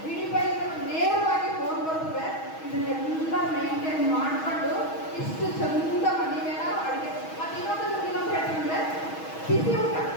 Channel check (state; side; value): late; right; 6.3 ms